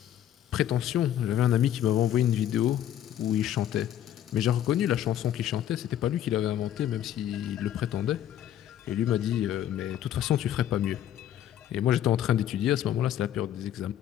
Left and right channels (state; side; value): quieter; right; 11.1 dB